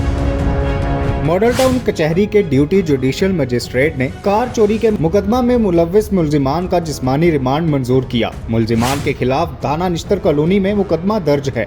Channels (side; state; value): both; identical; correlation 1.00